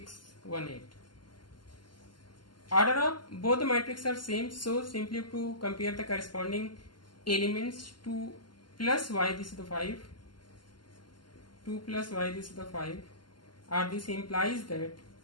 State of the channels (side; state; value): right; late; 0.71 ms